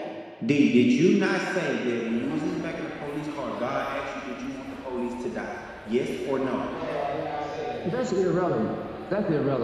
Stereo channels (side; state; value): both; identical; correlation 1.00